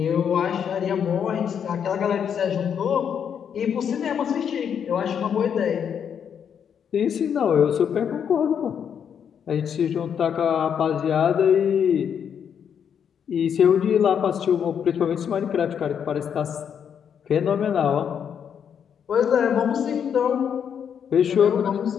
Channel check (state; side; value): quieter; right; 7.9 dB